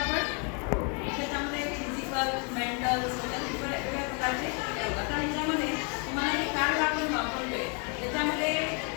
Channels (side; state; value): right; quieter; 36.1 dB